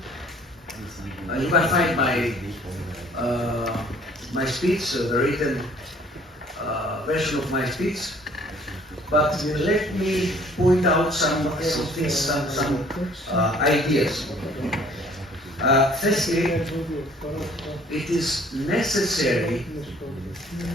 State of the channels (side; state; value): both; normal; correlation 0.56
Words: You can find my speech, the written version of my speech, but let me point out some ideas. Firstly, it is necessary